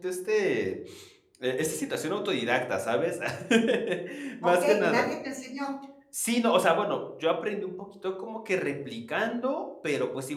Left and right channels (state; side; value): identical; both; correlation 1.00